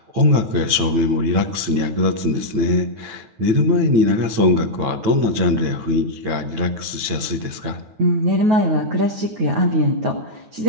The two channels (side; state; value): left; late; 9.0 ms